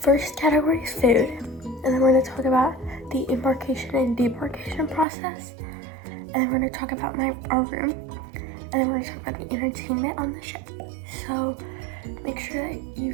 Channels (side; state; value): left; drops out; at 5.1 s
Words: category is food, and then we're going to talk about the embarkation and debarkation process, and then we're going to talk about our room, and then we're going to talk about the entertainment on the ship. So make sure that you